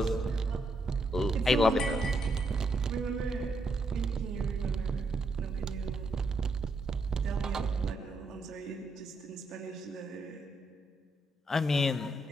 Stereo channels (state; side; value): normal; both; correlation 0.79